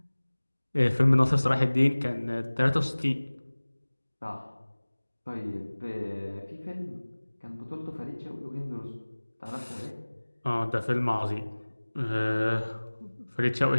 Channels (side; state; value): both; inverted; correlation -1.00